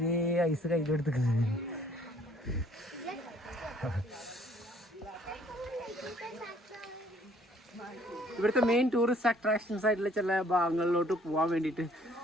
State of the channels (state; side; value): normal; both; correlation 0.60